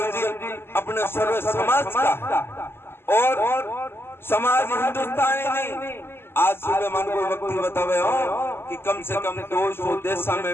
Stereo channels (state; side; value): late; right; 0.11 ms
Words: जी अपने सर्व समाज का और समाज हिंदुस्तानी नहीं। आज सुबह मन को व्यक्ति बतावे हो कि कम से कम 200 देशों में